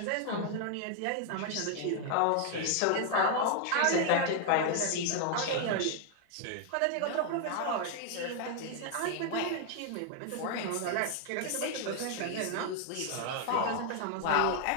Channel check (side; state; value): both; different; correlation 0.00